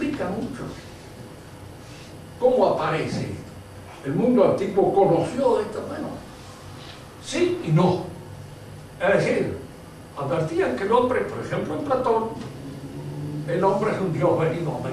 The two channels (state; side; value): identical; both; correlation 1.00